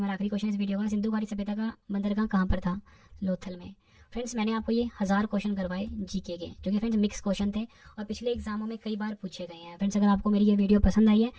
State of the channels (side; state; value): both; identical; correlation 1.00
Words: आखिरी क्वेश्चन इस वीडियो का, सिंधु घाटी सभ्यता का बंदरगाह कहाँ पर था? लोथल में। फ्रेंड्स मैंने आपको ये 1000 क्वेश्चन करवाए जीके के, जो कि फ्रेंड्स मिक्स क्वेश्चन थे और पिछले एग्जामों में कई बार पूछे गए हैं। फ्रेंड्स अगर आपको मेरी ये वीडियो पसंद आई है,